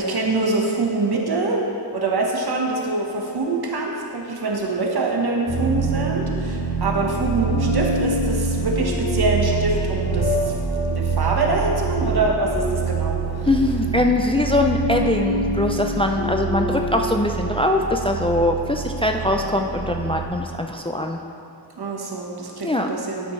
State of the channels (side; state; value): both; normal; correlation 0.24